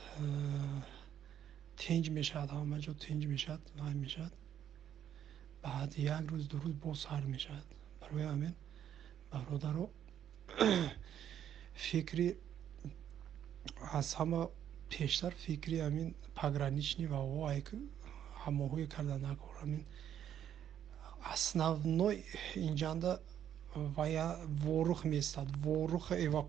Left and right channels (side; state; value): left; quieter; 9.9 dB